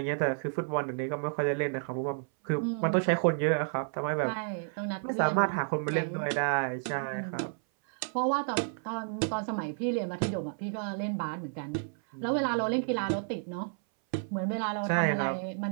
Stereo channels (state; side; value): silent; left; 57 dB below the other